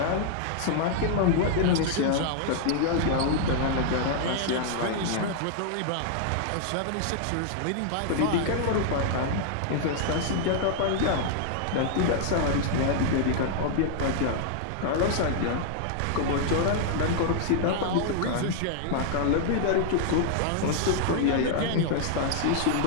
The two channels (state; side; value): different; both; correlation -0.01